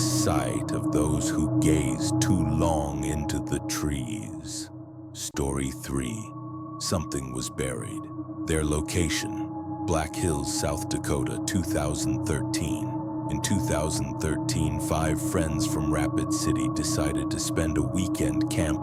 of those who gaze too long into the trees. Story 3. Something was buried. Their location: Black Hills, South Dakota, 2013. In 2013, 5 friends from Rapid City decided to spend a weekend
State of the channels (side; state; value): both; identical; correlation 1.00